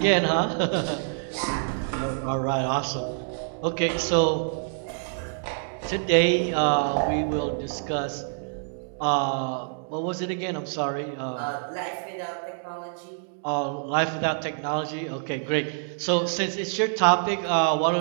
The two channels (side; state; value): left; silent; digital silence